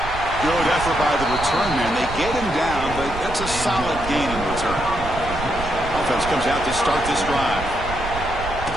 Good effort by the return man. They get him down, but that's a solid gain in return. Offense comes out to start this drive.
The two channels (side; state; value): right; noise; rumble, 9 dB below the sound